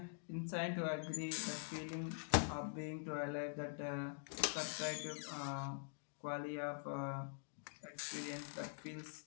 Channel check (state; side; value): silent; right; digital silence